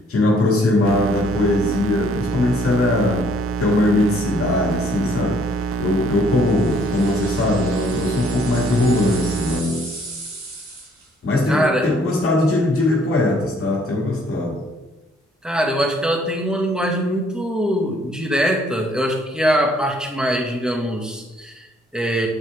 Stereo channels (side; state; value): both; normal; correlation 0.63